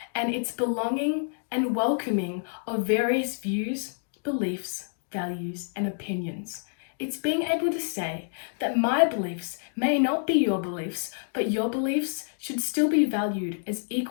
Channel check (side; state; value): right; silent; digital silence